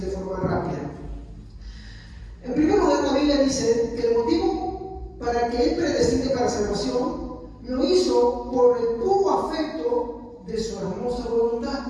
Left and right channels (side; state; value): both; identical; correlation 1.00